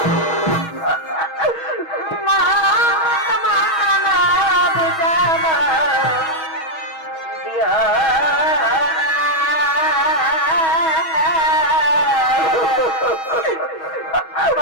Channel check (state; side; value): late; right; 6.3 ms